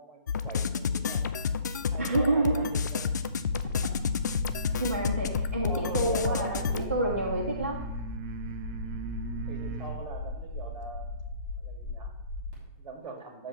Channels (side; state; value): both; inverted; correlation -0.57